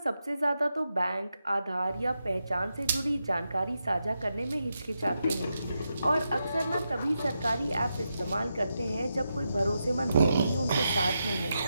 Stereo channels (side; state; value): both; inverted; correlation -0.86